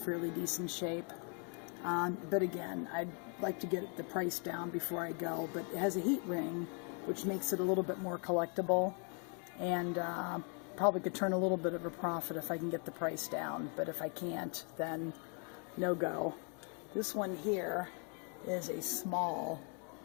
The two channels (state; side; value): quieter; right; 39.3 dB